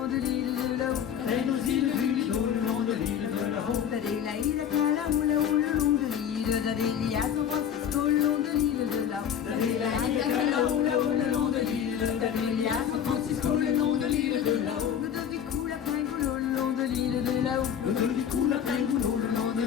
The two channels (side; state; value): right; quieter; 8.9 dB